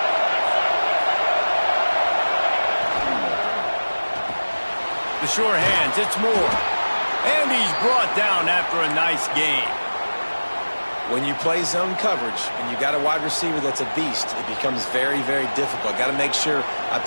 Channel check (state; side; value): inverted; both; correlation -1.00